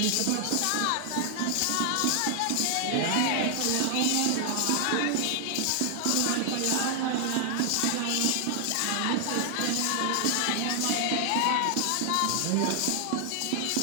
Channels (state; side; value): different; both; correlation 0.00